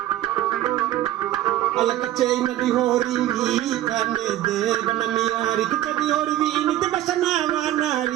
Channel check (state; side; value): quieter; left; 13.6 dB